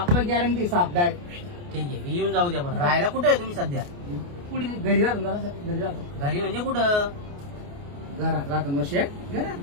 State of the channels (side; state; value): left; late; 29 ms